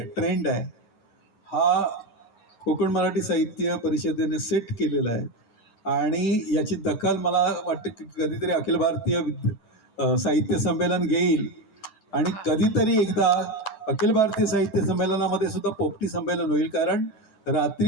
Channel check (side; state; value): right; late; 9.4 ms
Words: आहे. हा कोकण मराठी साहित्य परिषदेने सेट केलेला आहे आणि याची दखल मला वाटतं की कधीतरी अखिल भारतीय साहित्य संमेलन घेईल आणि कधीतरी एकदा अखिल भारतीय साहित्य संमेलनामध्ये सुद्धा पोपटी संमेलन होईल. कारण